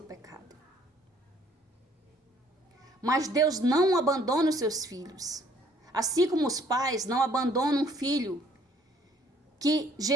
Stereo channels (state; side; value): normal; both; correlation 0.60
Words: pecado. Mas Deus não abandona os seus filhos. Assim como os pais não abandonam um filho que